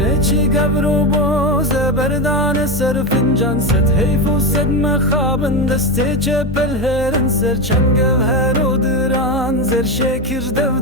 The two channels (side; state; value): both; normal; correlation 0.15